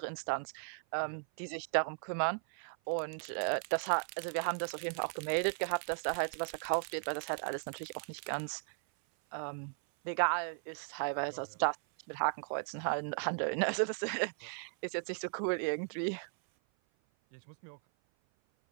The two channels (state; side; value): silent; left; 53 dB below the other